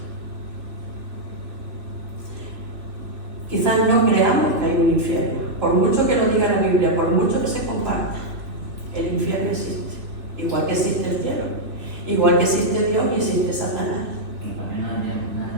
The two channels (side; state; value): left; late; 3.2 ms